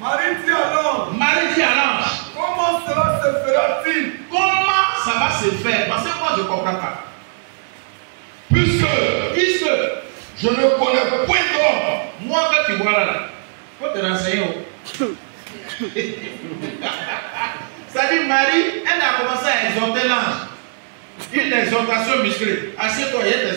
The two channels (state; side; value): silent; left; digital silence